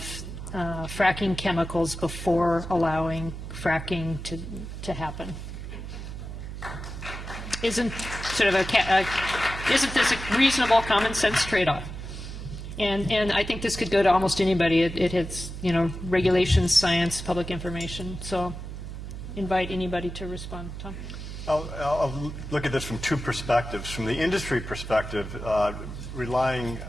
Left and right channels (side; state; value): right; noise; hum, 9 dB below the sound